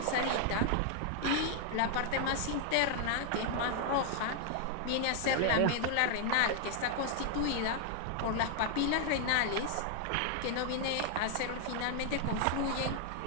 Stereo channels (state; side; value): different; both; correlation 0.00